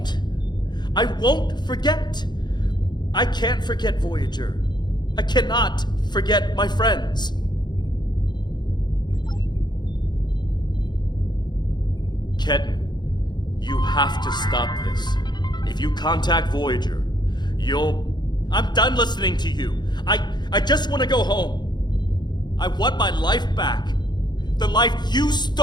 forget. I can't forget Voyager. I cannot forget my friends. Ketan, you have to stop this. If you contact Voyager, I'm done listening to you. I just want to go home. I want my life back. The life you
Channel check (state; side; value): late; right; 0.21 ms